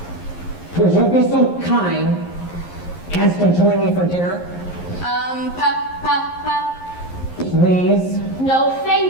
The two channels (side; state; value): right; late; 11 ms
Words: Would you be so kind as to join me for dinner? Please? No,